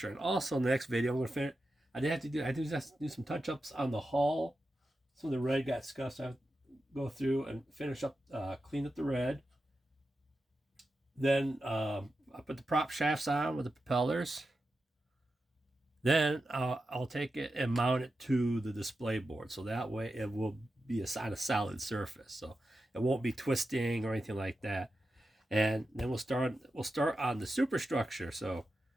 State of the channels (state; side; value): normal; both; correlation 0.90